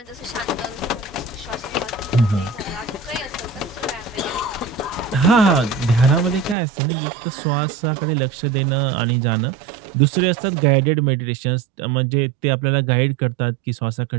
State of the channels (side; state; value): left; drops out; at 6.6 s